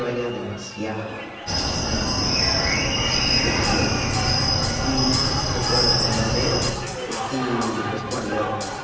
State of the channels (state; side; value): identical; both; correlation 1.00